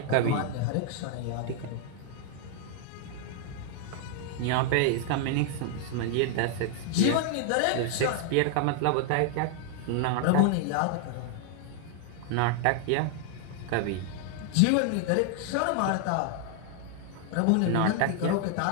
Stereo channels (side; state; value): both; different; correlation 0.00